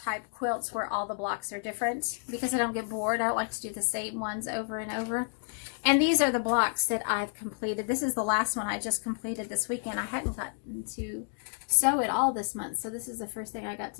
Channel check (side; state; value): right; silent; 58 dB below the other